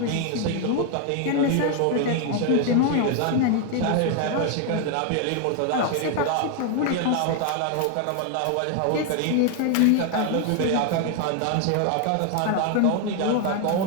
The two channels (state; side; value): different; both; correlation 0.00